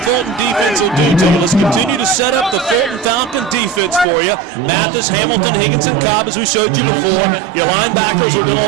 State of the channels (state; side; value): drops out; left; at 4.0 s